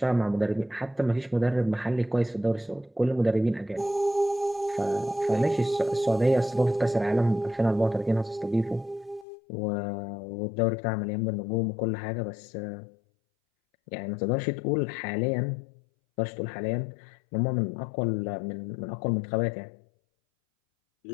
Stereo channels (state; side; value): drops out; right; at 9.2 s